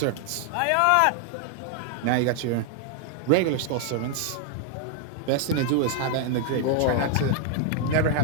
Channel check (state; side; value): different; both; correlation 0.00